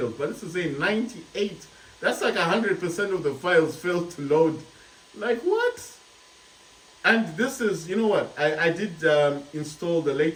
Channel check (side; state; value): both; identical; correlation 1.00